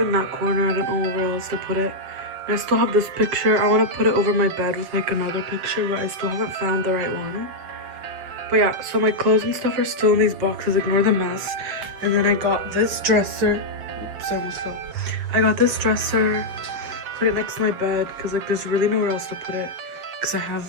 in that corner. I don't know where else to put it. And I still have this picture. I want to put it over my bed with like another picture, but I still haven't found the right one. But yeah, so my clothes and stuff are still in these boxes. Ignore the mess. And then I got this dresser. Oops, I almost fell. I got this dresser, put it next to my bed because like there's really nowhere else to put it because I have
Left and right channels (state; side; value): late; left; 7.4 ms